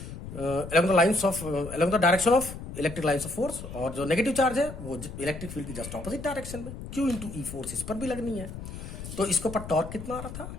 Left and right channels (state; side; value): noise; left; rumble, 10 dB below the sound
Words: along the direction of electric lines of force, और जो नेगेटिव चार्ज है वो इलेक्ट्रिक फील्ड की जस्ट ऑपोजिट डायरेक्शन में, Q × E फोर्स इस पर भी लगनी है। तो इसके ऊपर टॉर्क कितना आ रहा था,